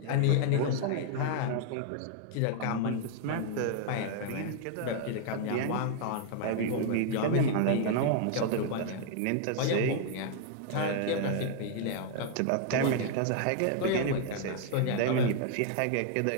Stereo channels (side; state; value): both; different; correlation 0.00